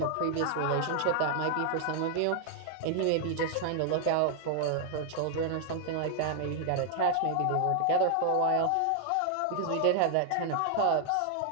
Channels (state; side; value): different; both; correlation 0.00